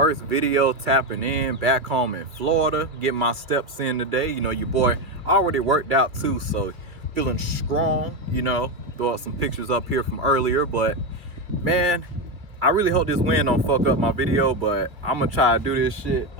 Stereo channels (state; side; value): late; left; 2.4 ms